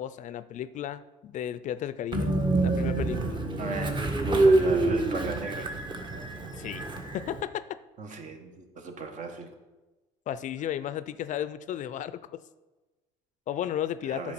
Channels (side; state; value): both; normal; correlation 0.67